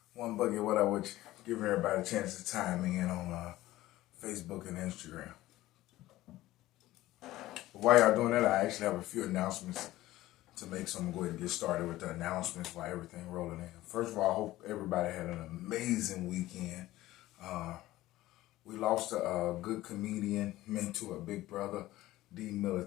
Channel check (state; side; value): quieter; right; 16.4 dB